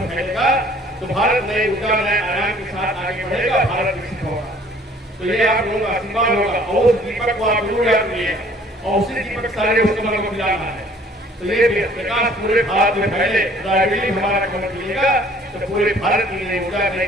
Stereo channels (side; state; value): both; normal; correlation 0.55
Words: फैलेगा, तो भारत नए ऊर्जा नए आयाम के साथ आगे बढ़ेगा, भारत विकसित होगा। तो ये आप लोगों का आशीर्वाद होगा और उस दीपक को आप जरूर याद करिए और उसी दीपक सारे उसको मन को मिलाना है। तो ये प्रकाश पूरे भारत में फैले, राजनीति हमारा कमर मिलेगा तो पूरे भारत की नई ऊर्जा नई